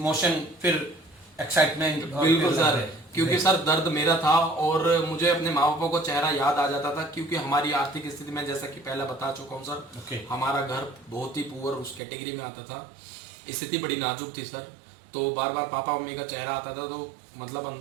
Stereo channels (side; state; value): left; drops out; at 12.0 s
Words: फिर एक्साइटमेंट। बिल्कुल सर, क्योंकि सर दर्द मेरा था और मुझे अपने माँ बापों को चेहरा याद आ जाता था, क्योंकि हमारी आर्थिक स्थिति में जैसा कि पहले बता चुका हूँ सर, Okay. हमारा घर बहुत ही पुअर उस कैटेगरी में आता था, स्थिति बड़ी नाजुक थी सर। तो बार बार पापा मम्मी का चेहरा आता था, तो मतलब